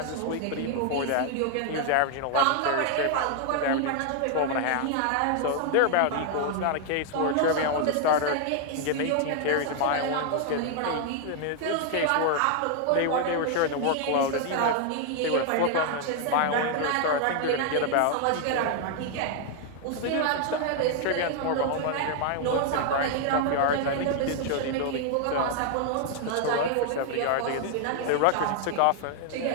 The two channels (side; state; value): both; different; correlation 0.00